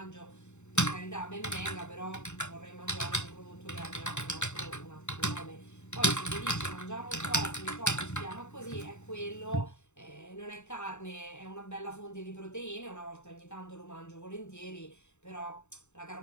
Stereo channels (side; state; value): right; late; 0.83 ms